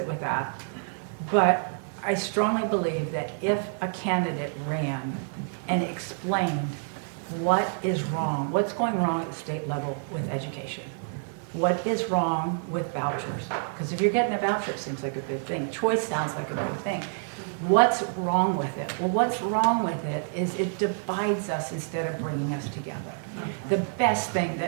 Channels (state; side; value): silent; left; digital silence